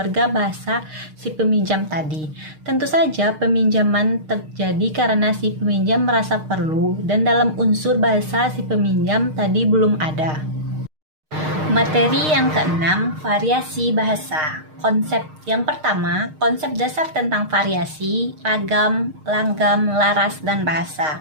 bahasa si peminjam tadi. Tentu saja peminjaman terjadi karena si peminjam merasa perlu dan dalam unsur bahasa si peminjam tadi belum ada. Materi yang keenam, variasi bahasa. Konsep yang pertama, konsep dasar tentang variasi, ragam, langgam, laras, dan bahasa.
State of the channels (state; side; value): late; left; 6.5 ms